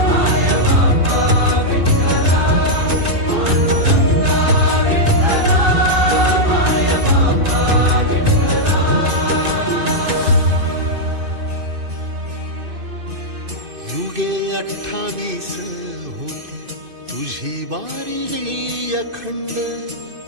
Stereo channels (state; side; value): late; left; 2.5 ms